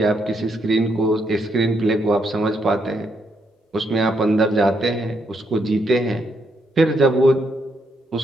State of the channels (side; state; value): both; normal; correlation 0.76